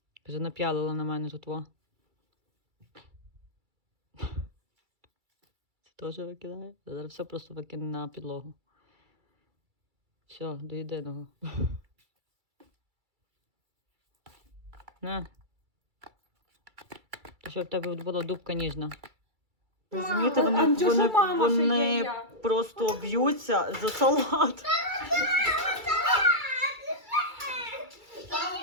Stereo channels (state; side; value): late; left; 2.3 ms